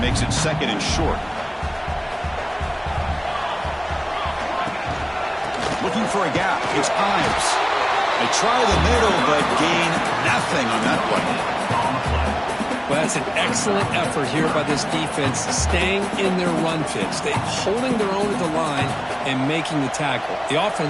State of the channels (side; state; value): both; identical; correlation 1.00